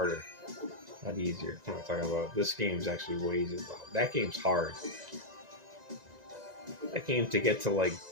Not easier. I'm not talking about. This game's actually way easier. That game's hard. That game to get to like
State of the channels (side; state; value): left; late; 1.9 ms